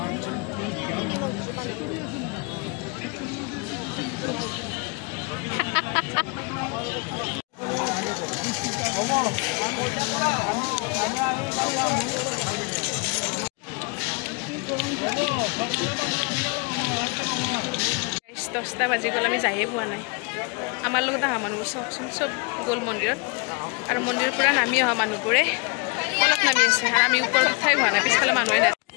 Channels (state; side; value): quieter; right; 32.0 dB